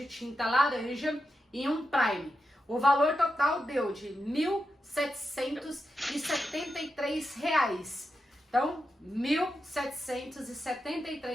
tinta laranja e um prime. O valor total deu de R$ 1.773. Então, R$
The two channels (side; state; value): both; normal; correlation 0.88